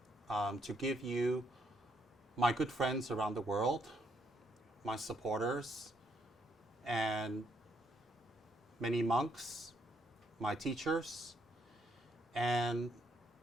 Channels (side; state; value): both; normal; correlation 0.73